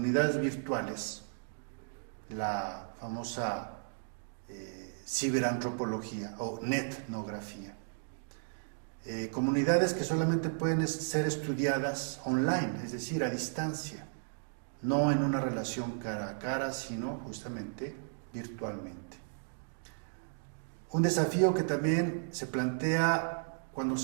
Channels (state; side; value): silent; left; digital silence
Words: virtuales, la famosa ciberantropología o netnografía. Comunidades que solamente pueden ser estudiadas online, es decir, a distancia, no en una relación cara a cara, sino justamente virtualmente. Un desafío que también se plantea cuando